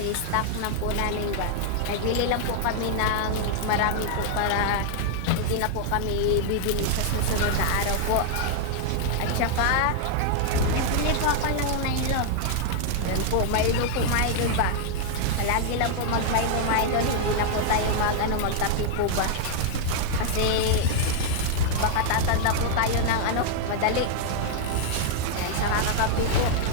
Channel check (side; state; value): both; different; correlation 0.00